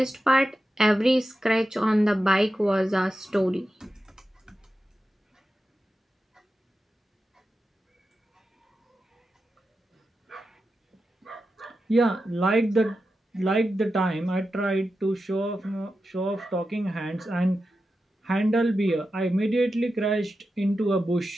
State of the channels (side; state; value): both; normal; correlation 0.91